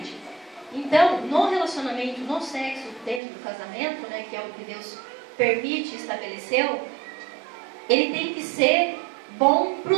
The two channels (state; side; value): drops out; left; at 3.2 s